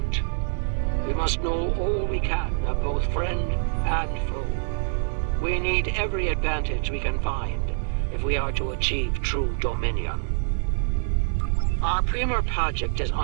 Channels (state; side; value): silent; left; digital silence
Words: We must know all we can of both friend and foe. We need every advantage we can find if we are to achieve true dominion. Our premier project is